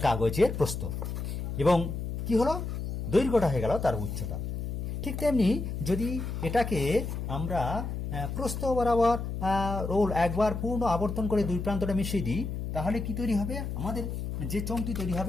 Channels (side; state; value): left; noise; hum, 4 dB below the sound